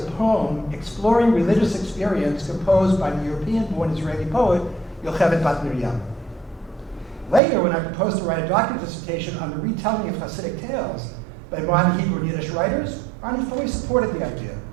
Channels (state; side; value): drops out; left; at 7.4 s